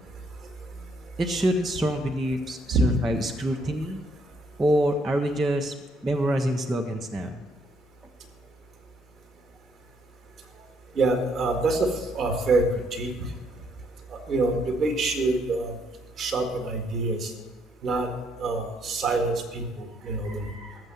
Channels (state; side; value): normal; both; correlation 0.71